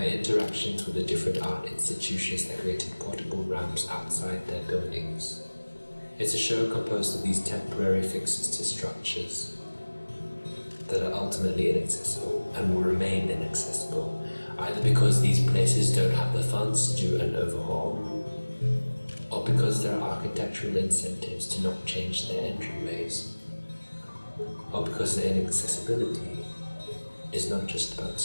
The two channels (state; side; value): inverted; both; correlation -1.00